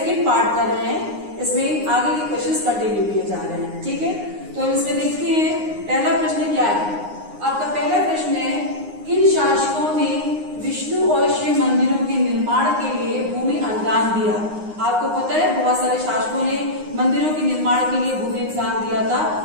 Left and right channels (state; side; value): late; left; 9.7 ms